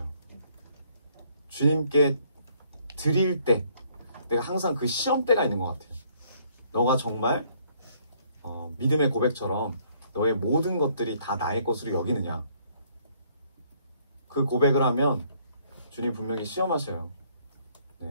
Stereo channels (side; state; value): both; inverted; correlation -0.64